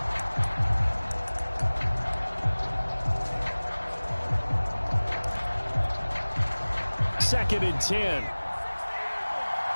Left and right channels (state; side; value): inverted; both; correlation -1.00